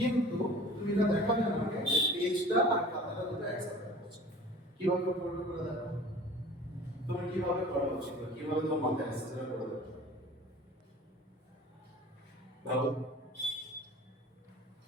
তুমি এটা দেখাবে আমাকে যে পেজটা আর খাতাটা দুটো একসাথে হচ্ছে কিভাবে করবে করে দেখো তুমি কিভাবে করা উচিত, কিভাবে তোমার মাথায় আসছে সেটা করে দেখো ভালো।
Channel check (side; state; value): both; normal; correlation 0.43